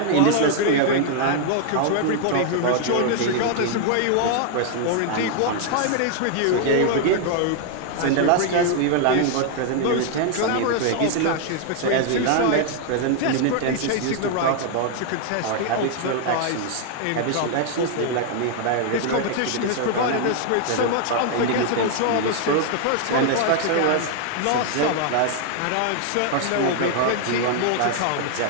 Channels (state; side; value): different; both; correlation 0.00